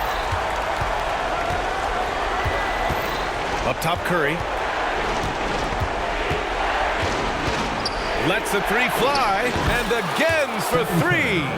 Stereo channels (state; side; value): identical; both; correlation 1.00